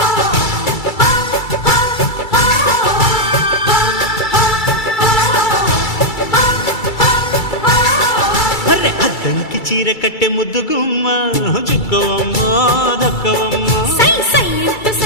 అద్దంకి చీర కట్టె ముద్దుగుమ్మ చుక్కవమ్మా దక్కవమ్మా సై సై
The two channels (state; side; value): late; right; 2.3 ms